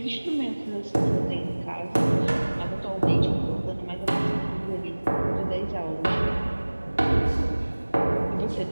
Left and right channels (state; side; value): inverted; both; correlation -1.00